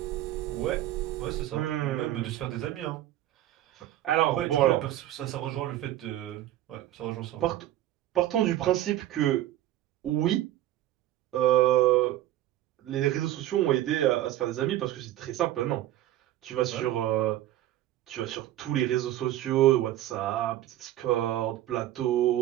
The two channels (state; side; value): quieter; left; 13.8 dB